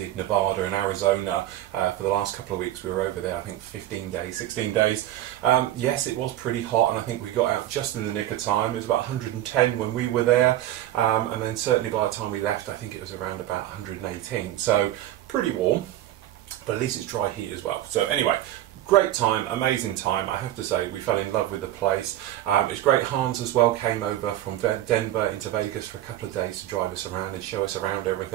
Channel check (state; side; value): quieter; left; 13.4 dB